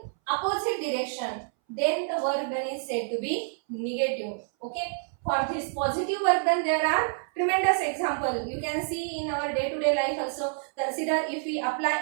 opposite direction, then the work done is said to be negative. Okay, for this positive work done, there are tremendous example. You can see in our day-to-day life also. Consider if we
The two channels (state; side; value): silent; left; 59 dB below the other